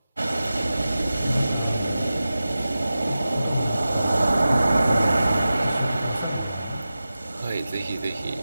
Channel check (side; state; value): both; inverted; correlation -0.94